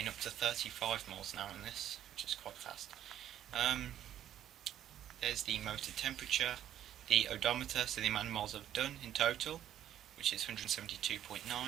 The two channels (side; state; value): left; quieter; 11.0 dB